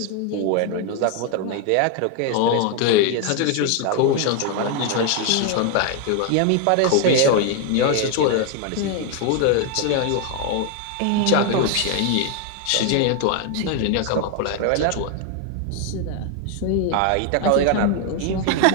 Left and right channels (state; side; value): different; both; correlation 0.01